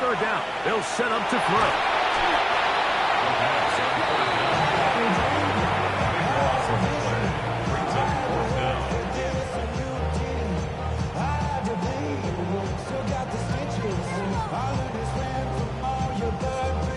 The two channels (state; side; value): identical; both; correlation 1.00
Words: down, they'll set up to throw.